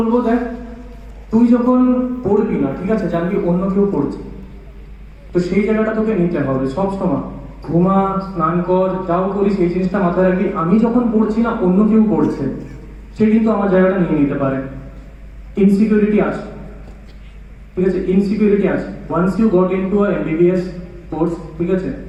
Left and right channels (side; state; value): both; identical; correlation 1.00